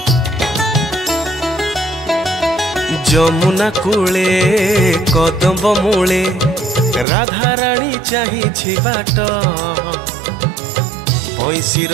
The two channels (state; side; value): drops out; left; at 7.1 s